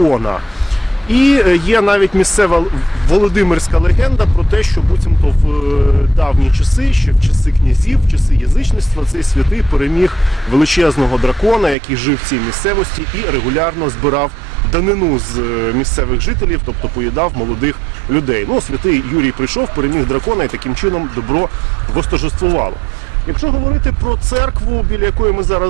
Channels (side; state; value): left; drops out; at 11.8 s